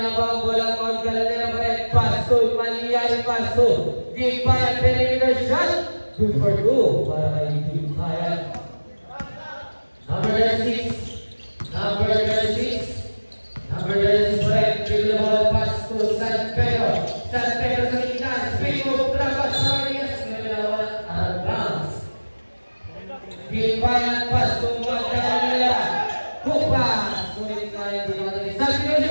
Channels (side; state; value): both; inverted; correlation -1.00